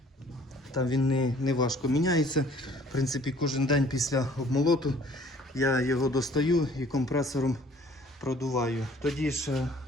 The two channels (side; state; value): both; normal; correlation 0.55